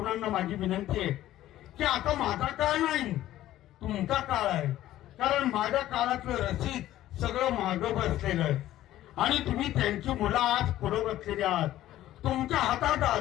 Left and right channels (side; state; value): right; quieter; 13.9 dB